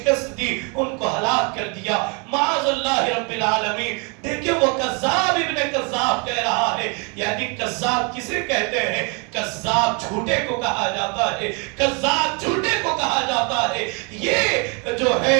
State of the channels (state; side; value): quieter; left; 33.8 dB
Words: دی، ان کو ہلاک کر دیا، معاذ اللہ رب العالمین۔ دیکھیں وہ کذاب ابن کذاب کہہ رہا ہے، یعنی کذاب کسے کہتے ہیں؟ کذاب جھوٹے کو کہا جاتا ہے، کذاب جھوٹے کو کہا جاتا ہے۔ یہ جو ہے